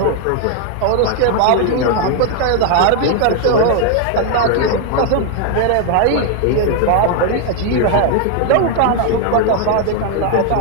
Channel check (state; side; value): different; both; correlation 0.01